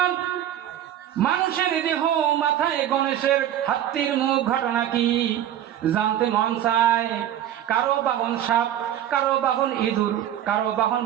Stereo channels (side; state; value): left; quieter; 11.3 dB